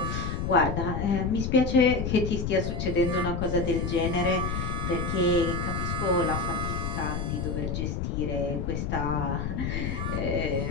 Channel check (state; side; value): noise; left; rumble, 2 dB below the sound